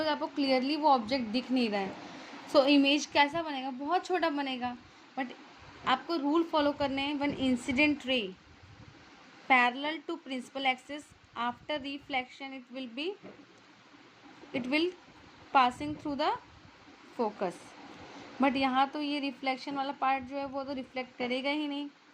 कि आपको क्लियरली वो ऑब्जेक्ट दिख नहीं रहा है. सो इमेज कैसा बनेगा? बहुत छोटा बनेगा. बट आपको रूल फॉलो करने हैं. When incident ray parallel to principal axis after reflection it will passing through the focus. But यहाँ तो ये रिफ्लेक्शन वाला पार्ट जो है वो तो रिफ्लेक्ट करेगा ही नहीं.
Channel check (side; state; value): both; identical; correlation 1.00